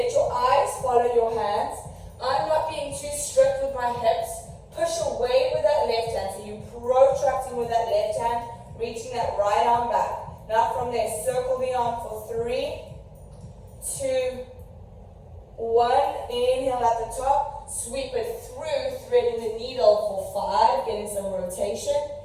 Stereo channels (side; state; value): both; identical; correlation 1.00